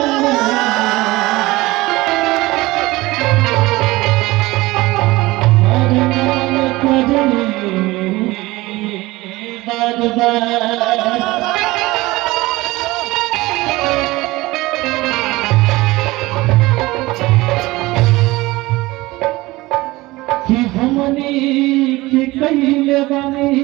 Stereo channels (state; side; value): quieter; left; 20.1 dB